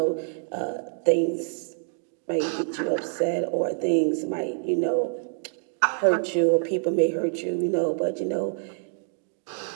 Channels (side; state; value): left; silent; 61 dB below the other